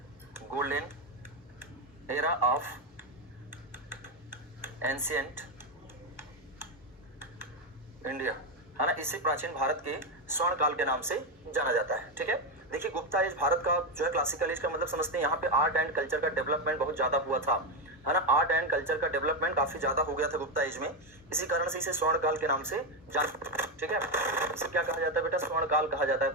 golden era of ancient India, है ना, इसे प्राचीन भारत के स्वर्ण काल के नाम से जाना जाता है। ठीक है, देखिए गुप्ता एज भारत का जो है क्लासिकल एज का मतलब समझते हैं, यहाँ पे आर्ट एंड कल्चर का डेवलपमेंट बहुत ज्यादा हुआ था, है ना, आर्ट एंड कल्चर का डेवलपमेंट काफी ज्यादा हो गया था गुप्ता एज में, इसी कारण से इसे स्वर्ण काल के नाम से जान। ठीक है, इसे क्या कहा जाता है बेटा, स्वर्ण काल कहा जाता है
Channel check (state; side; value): normal; both; correlation 0.08